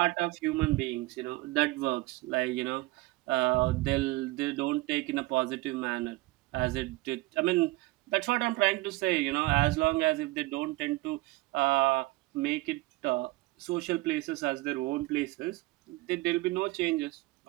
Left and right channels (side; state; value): left; quieter; 21.1 dB